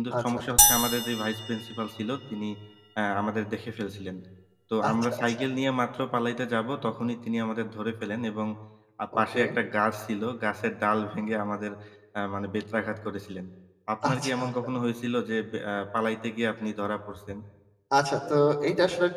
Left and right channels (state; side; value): identical; both; correlation 1.00